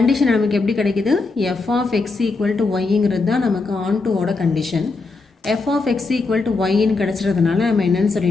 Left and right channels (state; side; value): quieter; right; 3.9 dB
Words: நமக்கு எப்படி கிடைக்குது? f of x equal to yங்கிறது தான் நமக்கு ஆன்2ஓட கண்டிஷன். f of x equal to yன்னு கிடச்சிறதுனால நம்ம என்னென்னு